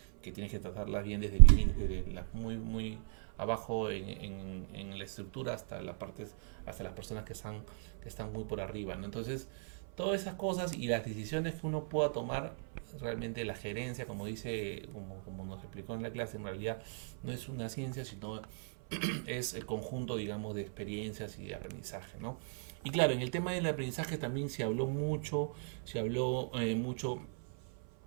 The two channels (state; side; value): silent; left; 54 dB below the other